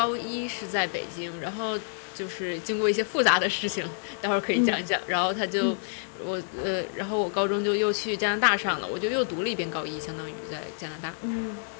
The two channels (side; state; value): right; silent; digital silence